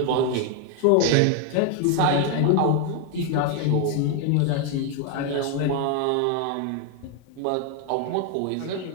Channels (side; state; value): both; different; correlation 0.01